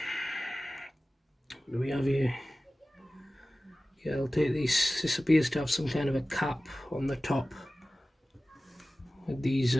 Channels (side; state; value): both; normal; correlation 0.96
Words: do we have here? Yeah, I'll take these. This appears to have some kind of a cap on the top with these